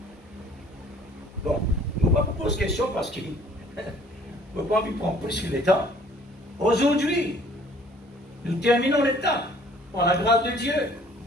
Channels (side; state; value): both; normal; correlation 0.56